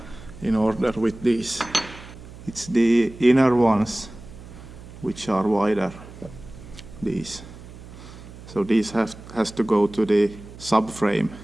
in order with these. It's the inner ones which are wider, these. So these has to go to the subframe,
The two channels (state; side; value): noise; right; hum, 16 dB below the sound